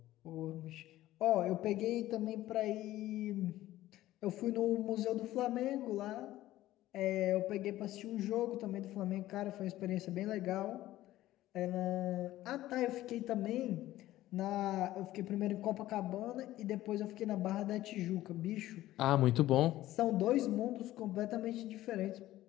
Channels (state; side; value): quieter; right; 15.1 dB